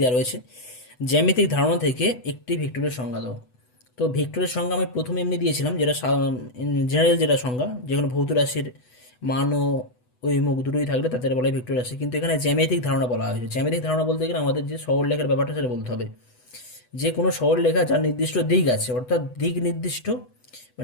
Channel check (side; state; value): right; late; 8.0 ms